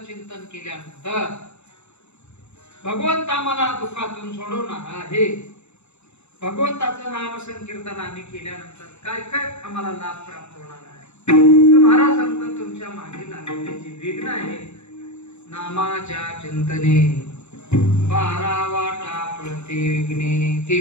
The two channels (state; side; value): late; right; 0.81 ms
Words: चिंतन केल्यानंतर भगवंत आम्हाला दुःखातून सोडवणार आहे. भगवंताचं नाम संकीर्तन आम्ही केल्यानंतर काय काय आम्हाला लाभ प्राप्त होणार आहे, तर महाराज सांगतात, तुमच्या मागे लागलेले जे विघ्न आहे नामाच्या चिंतने 12 वाटा प्रति विघ्ने, ते